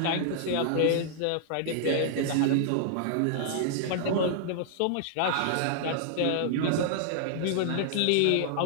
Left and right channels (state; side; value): different; both; correlation -0.01